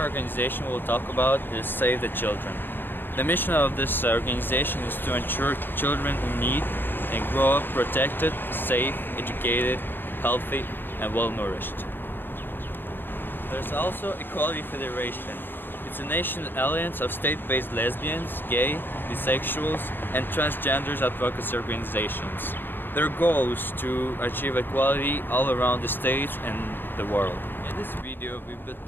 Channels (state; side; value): late; right; 0.095 ms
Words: organization we'll talk about is Save the Children. The mission of this organization is to ensure children in need and grow up protected, safe, educated, healthy, and well-nourished. There's also Equality Federation. It's a national alliance of state-based lesbians, gay, bisexuals, and transgenders advocacy organizations. Their goal is to achieve equality all around the states and the world. In this video, we've been